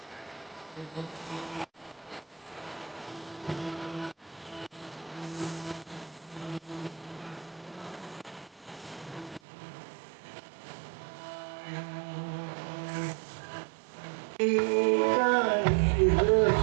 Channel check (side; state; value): left; drops out; at 9.4 s